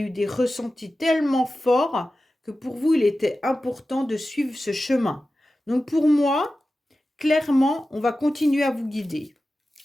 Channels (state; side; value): normal; both; correlation 0.94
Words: des ressentis tellement forts que pour vous, il était important de suivre ce chemin. Donc pour moi, clairement, on va continuer à vous guider.